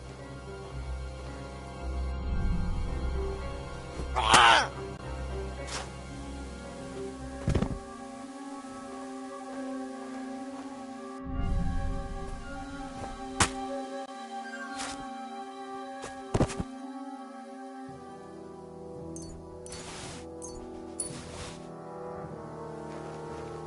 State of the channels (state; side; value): identical; both; correlation 1.00